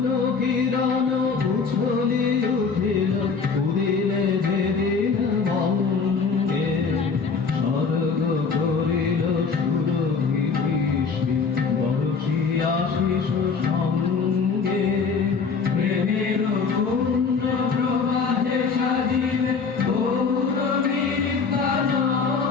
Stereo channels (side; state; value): right; quieter; 5.2 dB